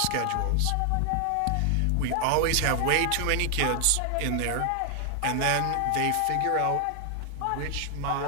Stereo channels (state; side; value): different; both; correlation 0.00